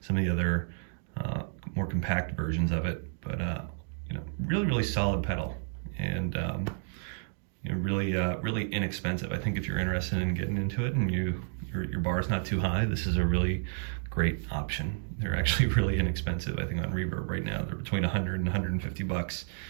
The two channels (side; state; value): left; silent; digital silence